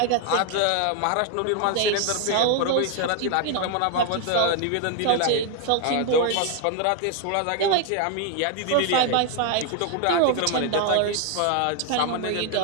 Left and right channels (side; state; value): both; different; correlation 0.01